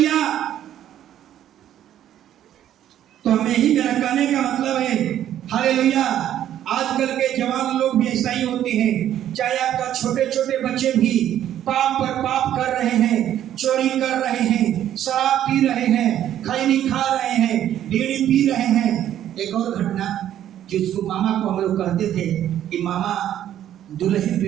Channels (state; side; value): quieter; left; 11.3 dB